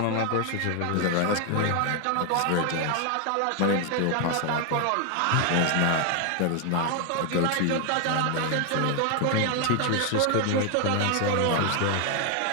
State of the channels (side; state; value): both; different; correlation 0.01